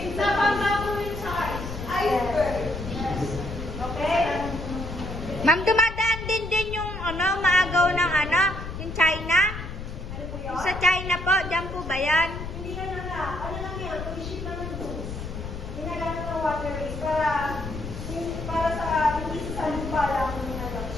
Sa pagkakawin sa Iceberg. Okay? Ma'am, dumadaan din yung maagaw ng yung China? Ano po yun? Sa China po, dyan po ba yan? Hindi ka na nga. Ano lang yan? Pag-ship naman goods. Ginagamit ng waterways para sa hindi sa lupa lang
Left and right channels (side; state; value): left; noise; rumble, 8 dB below the sound